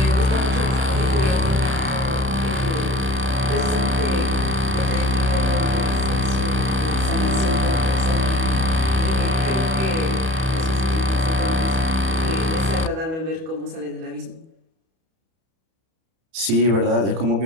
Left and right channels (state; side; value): late; left; 31 ms